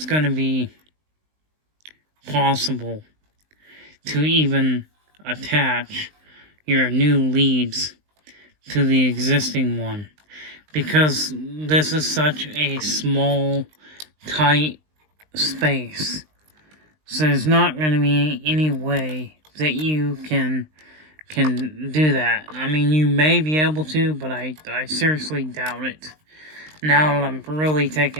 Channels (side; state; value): left; late; 19 ms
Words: going to be possible to even attach your new leads to the existing one, because this is such a small, tight space. So there's not going to be any way that you can do that. I mean, you may be able to, but I seriously doubt it. Now that I'm really